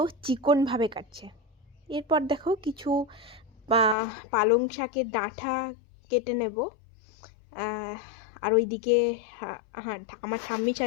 চিকনভাবে কাটছে। এরপর দেখো কিছু পালং শাকের ডাঁটা কেটে নেব। আর ওইদিকে হ্যাঁ, আমার ঠাম্মি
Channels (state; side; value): drops out; right; at 4.0 s